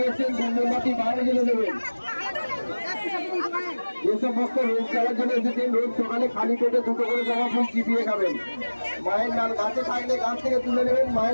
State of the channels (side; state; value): both; inverted; correlation -1.00